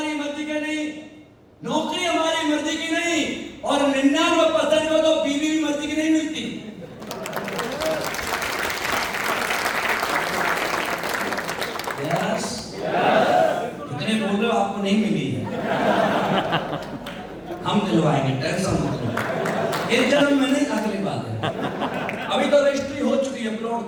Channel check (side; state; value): both; identical; correlation 1.00